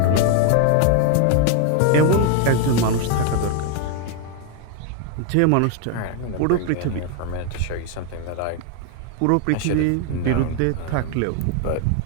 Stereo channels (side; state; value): both; different; correlation 0.01